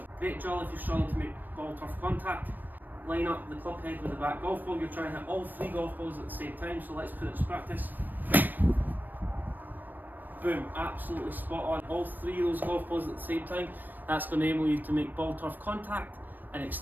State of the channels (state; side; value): late; left; 0.090 ms